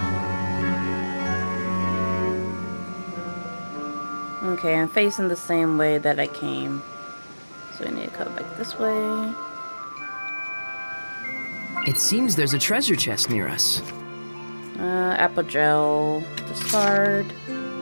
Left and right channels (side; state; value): both; inverted; correlation -1.00